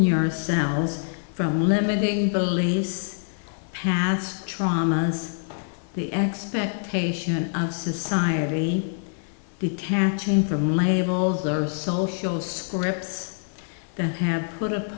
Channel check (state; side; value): silent; right; 62 dB below the other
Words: from limiting beliefs, past traumas, the expectation of society, detaching from labels or social scripts that we have put